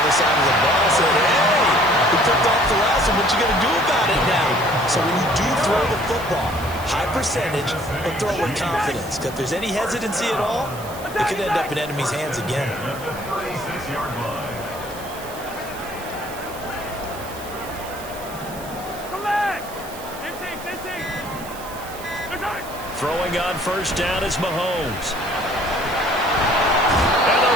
other side of the ball. I said, hey, we picked off the last one. What you going to do about it now? So when you do throw the football, high percentage, but throw with confidence. Because if there's any hesitancy at all, it could end up in enemy's hands again. Throwing on first down is Mahomes. And the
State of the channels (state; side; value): noise; right; hiss, 16 dB below the sound